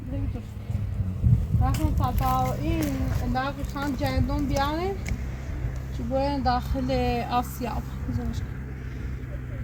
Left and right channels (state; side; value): identical; both; correlation 1.00